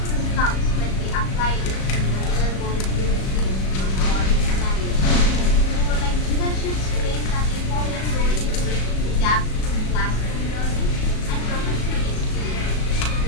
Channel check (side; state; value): right; late; 37 ms